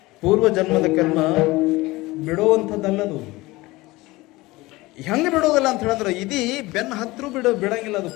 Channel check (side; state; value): right; quieter; 20.6 dB